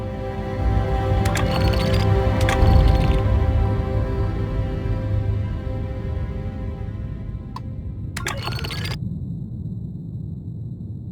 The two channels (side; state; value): both; identical; correlation 1.00